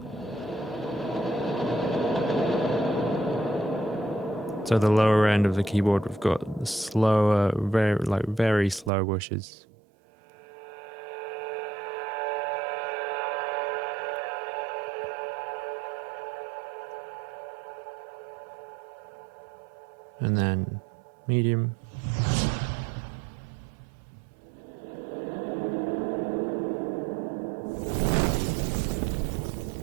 So the lower end of the keyboard, we've got the slower, very slow whooshes. And then medium.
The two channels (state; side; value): drops out; left; at 8.9 s